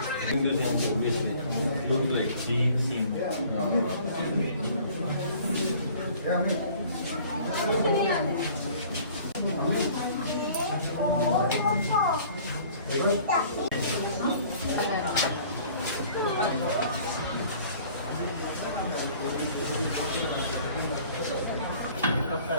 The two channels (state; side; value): inverted; both; correlation -0.51